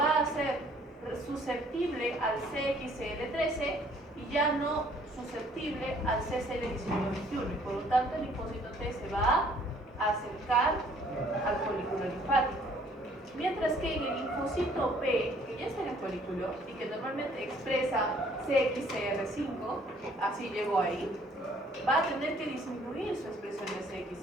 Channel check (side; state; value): both; normal; correlation 0.60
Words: a hacer susceptible al CXCL13 y ya no susceptible al CCL19-21, y por lo tanto el linfocito T se va a acercar al folículo linfático. Mientras que en el linfocito B, que ya está en el folículo y que normalmente expresa CXCR5, así llegó ahí, va a tener que disminuir su expresión de